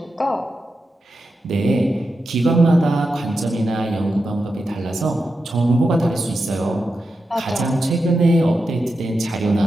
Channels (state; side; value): normal; both; correlation 0.89